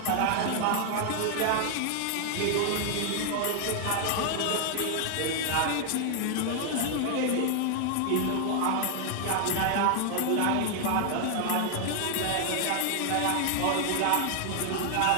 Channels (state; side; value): different; both; correlation 0.00